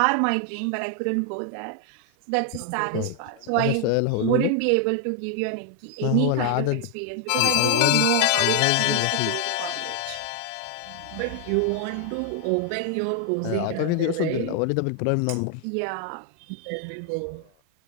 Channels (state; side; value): different; both; correlation 0.01